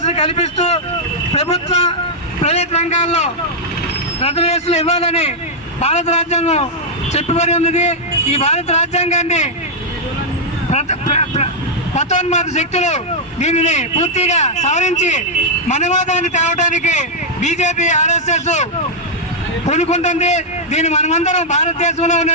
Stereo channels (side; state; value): both; normal; correlation -0.05